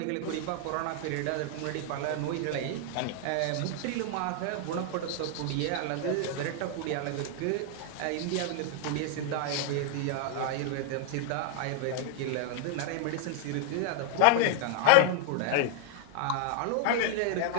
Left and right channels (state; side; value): different; both; correlation 0.00